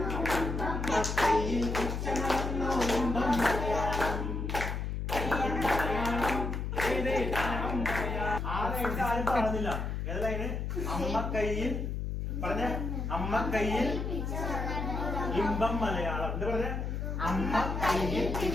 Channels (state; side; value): noise; left; hum, 2 dB below the sound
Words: ആരും പാടുന്നില്ല. ഏതതിന് അമ്മ കയ്യിൽ പറഞ്ഞ അമ്മ കയ്യിൽ ഇമ്പം മലയാളം എന്താ പറഞ്ഞ അമ്മ കയ്യിൽ